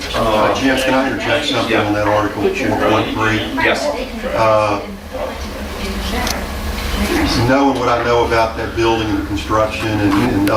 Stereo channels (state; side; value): identical; both; correlation 1.00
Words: Jim, can I interject something on that article 4.3? Yes. Knowing what I know about that building and the construction and